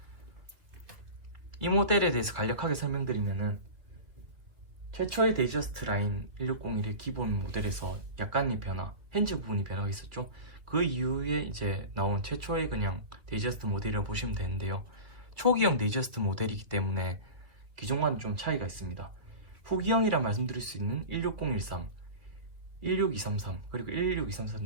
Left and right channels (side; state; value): left; late; 2.6 ms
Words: 이 모델에 대해서 간략하게 설명드리면은, 최초의 데이저스트 라인 1601의 기본 모델에서 약간의 변화, 핸즈 부분이 변화가 있었죠. 그 이후에 이제 나온 최초의 그냥 데이저스트 모델이라고 보시면 되는데요. 초기형 데이저스트 모델이기 때문에 기존과는 좀 차이가 있습니다. 후기형이라 말씀드릴 수 있는 16013, 16233, 그리고